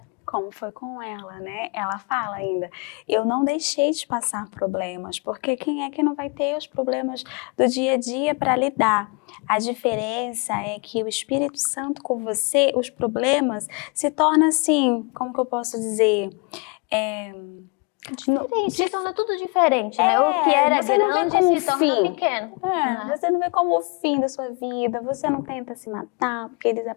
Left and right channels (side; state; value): right; quieter; 32.0 dB